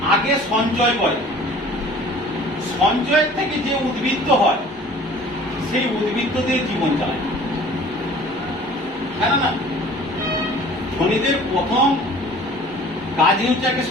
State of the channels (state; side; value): normal; both; correlation 0.48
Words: আগে সঞ্চয় করে, সঞ্চয়ের থেকে যে উদ্বৃত্ত হয় সেই উদ্বৃত্ত দিয়ে জীবন চালায়। কেন না, ধনীদের প্রথম কাজই হচ্ছে আগে